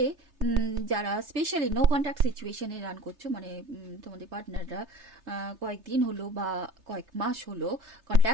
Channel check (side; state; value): left; late; 3.3 ms